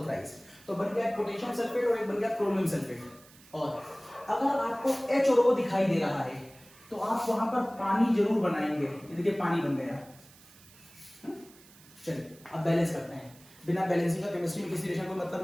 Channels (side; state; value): right; noise; hiss, 24 dB below the sound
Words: थ्राइस। तो बन गया पोटेशियम सल्फेट और एक बन गया क्रोमियम सल्फेट। और अगर आपको H और O दिखाई दे रहा है तो आप वहां पर पानी जरूर बनाएंगे। ये देखिए पानी बन गया। चलिए अब बैलेंस करते हैं। बिना बैलेंसिंग का केमिस्ट्री में किसी रिएक्शन को मतलब